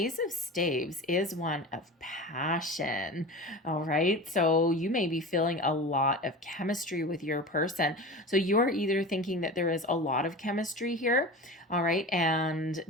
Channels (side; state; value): both; normal; correlation 0.32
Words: of Staves is one of passion. All right. So you may be feeling a lot of chemistry with your person. So you're either thinking that there is a lot of chemistry here, all right, and